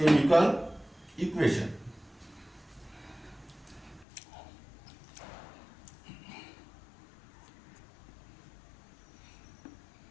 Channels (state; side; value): drops out; right; at 4.0 s